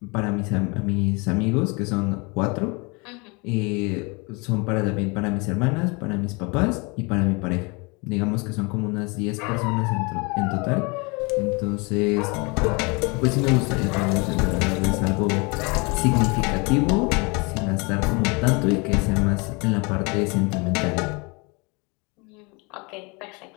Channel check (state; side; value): quieter; right; 29.1 dB